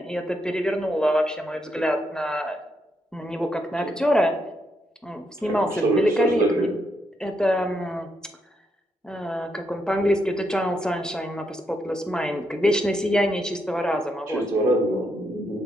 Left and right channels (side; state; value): both; normal; correlation 0.79